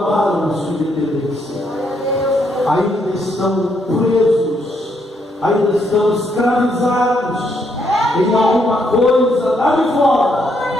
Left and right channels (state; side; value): normal; both; correlation 0.75